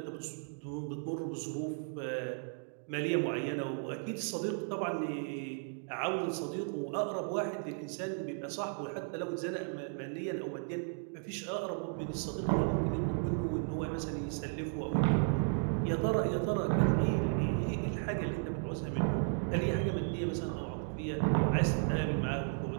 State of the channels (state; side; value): silent; left; 55 dB below the other